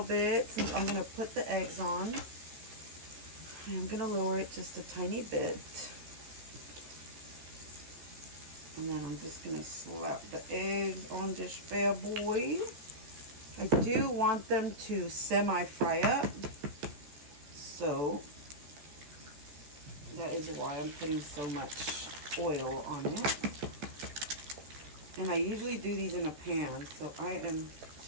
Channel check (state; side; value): late; left; 14 ms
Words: bit since I'm gonna put the eggs on. I'm gonna lower it just a tiny bit. And then I'm just gonna slap the eggs on this bad boy. I do want them to semi-fry up. So that is why I'm putting so much oil on it. And I usually do these in a pan, so I am